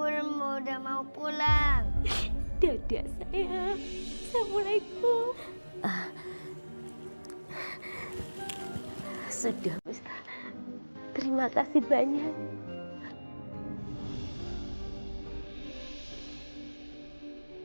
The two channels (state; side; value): inverted; both; correlation -1.00